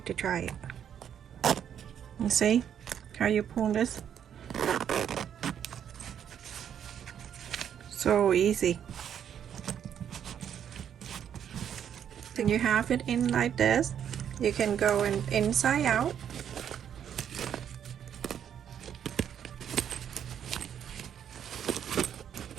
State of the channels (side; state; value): left; quieter; 9.0 dB